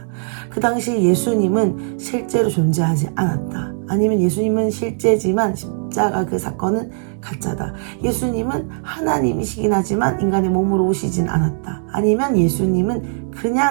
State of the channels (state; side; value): silent; left; digital silence